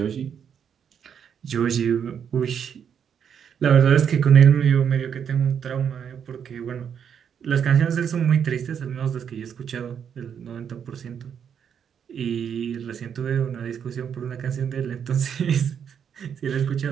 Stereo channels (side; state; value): left; quieter; 7.9 dB